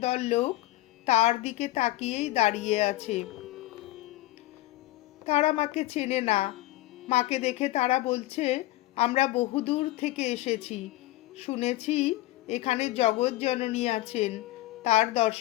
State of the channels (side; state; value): right; quieter; 17.3 dB